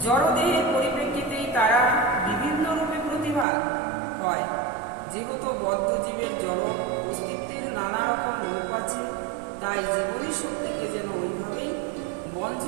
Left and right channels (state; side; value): drops out; left; at 3.5 s